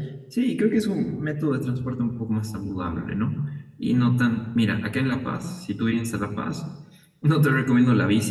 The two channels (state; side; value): identical; both; correlation 1.00